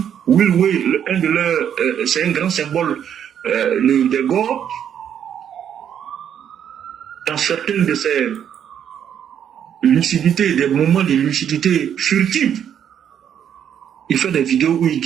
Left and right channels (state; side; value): quieter; left; 9.1 dB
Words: Will Way, un de leurs, c'est un grand symbole des Gors, dans certaines de ces lucidités, des moments de lucidité furtive, il fait des vidéos où il